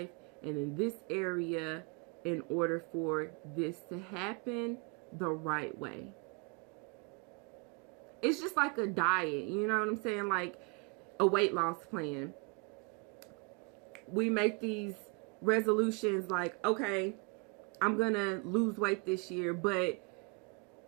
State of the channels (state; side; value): quieter; left; 32.9 dB